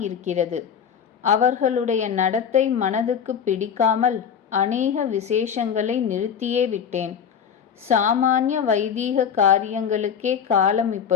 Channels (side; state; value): right; quieter; 7.6 dB